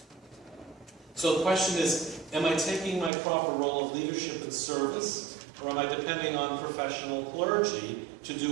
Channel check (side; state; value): left; drops out; at 3.1 s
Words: So the question is, am I taking my proper role of leadership and service, or am I depending on professional clergy to